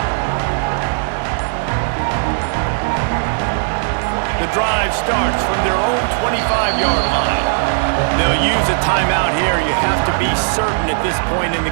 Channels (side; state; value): left; silent; digital silence